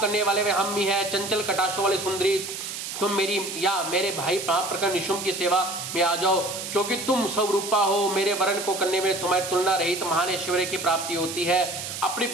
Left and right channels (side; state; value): right; noise; hiss, 7 dB below the sound